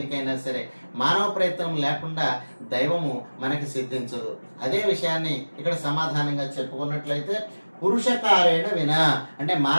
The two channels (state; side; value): inverted; both; correlation -1.00